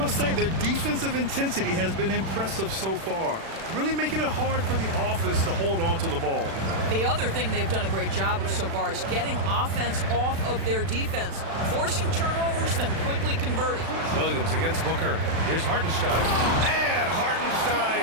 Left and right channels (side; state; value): left; late; 36 ms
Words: say their defensive intensity has been impressive so far, really making it hard for the offense to hold on to the ball. The other thing they've done a great job of so far is getting offense off of their defense, forcing turnovers, then quickly converting. Williams against Booker. Here's Hartenstein. And